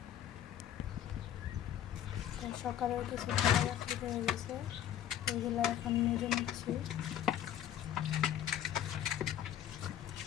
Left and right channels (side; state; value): right; quieter; 10.7 dB